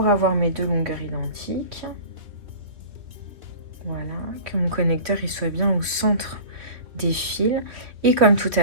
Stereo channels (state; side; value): late; left; 3.2 ms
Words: avoir mes 2 longueurs identiques. Voilà, que mon connecteur il soit bien au centre des fils. Et comme tout